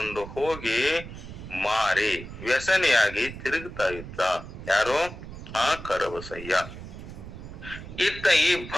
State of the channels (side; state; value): right; noise; rumble, 12 dB below the sound